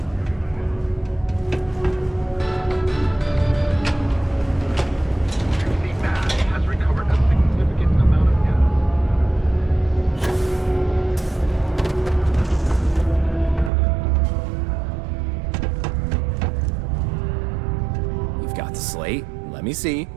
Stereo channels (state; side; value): drops out; left; at 13.7 s